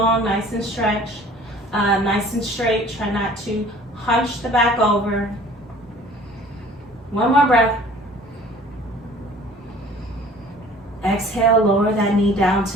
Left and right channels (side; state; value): both; normal; correlation 0.50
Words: nice and stretched, nice and straight. Try not to hunch the back over. One more breath. Exhale, lower that knee down